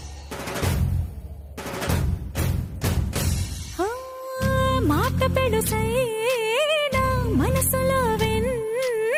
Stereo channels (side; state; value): both; identical; correlation 1.00